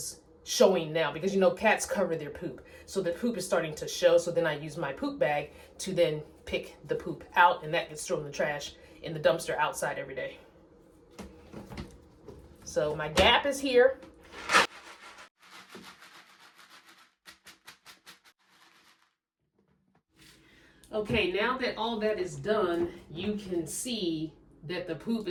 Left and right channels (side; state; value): both; identical; correlation 1.00